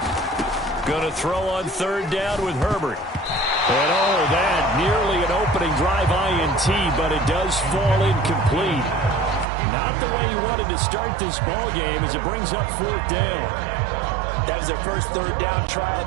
Going to throw on 3rd down with Herbert. And oh, that nearly an opening drive INT, but it does fall incomplete. Not the way he wanted to start this ball game as it brings up 4th down. That was their first 3rd down try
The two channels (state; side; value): drops out; left; at 9.5 s